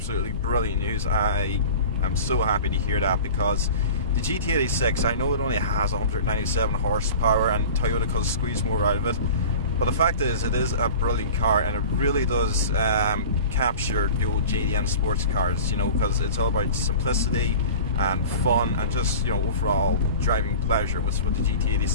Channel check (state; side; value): inverted; both; correlation -0.38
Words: brilliant news. I am so happy to hear that, because the GT86, I know it only has 197 horsepower and Toyota could squeeze more out of it, but the fact is, it is a brilliant car, and it really does capture the old JDM sports cars, you know, because it's all about simplicity and fun and just, you know, overall driving pleasure, which is what the